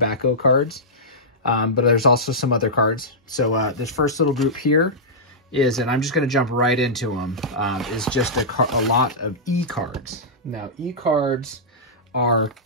cards, but there's also some other cards. So this first little group here is, and I'm just going to jump right into them, is just a lot of E cards. Now, E cards are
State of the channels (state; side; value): normal; both; correlation -0.13